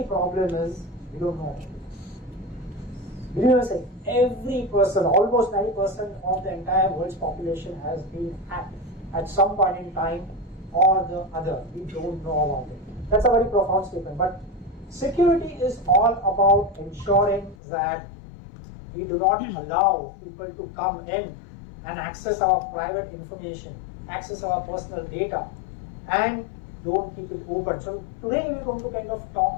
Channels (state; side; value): drops out; right; at 17.6 s